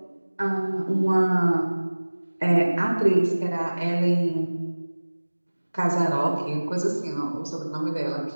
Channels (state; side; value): inverted; both; correlation -1.00